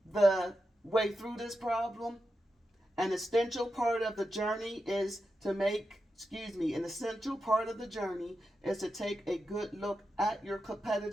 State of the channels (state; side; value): normal; both; correlation 0.89